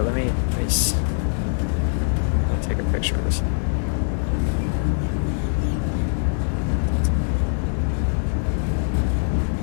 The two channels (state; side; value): silent; right; 64 dB below the other